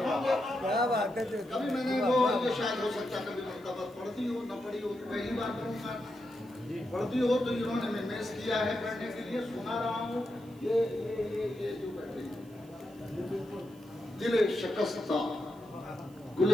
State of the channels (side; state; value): right; noise; hiss, 28 dB below the sound